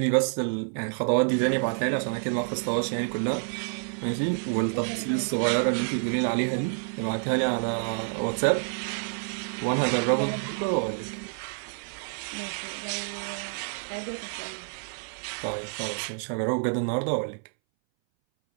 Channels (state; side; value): silent; left; 59 dB below the other